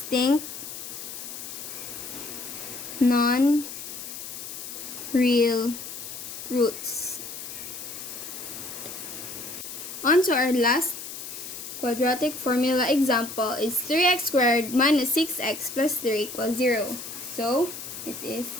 non-real roots. On to our last quadratic formula example is 3x squared minus 6x plus 3 equals 0. So it is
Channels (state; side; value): noise; left; hiss, 9 dB below the sound